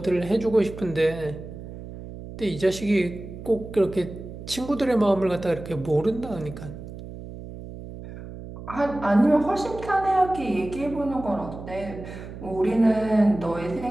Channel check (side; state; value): right; noise; hum, 12 dB below the sound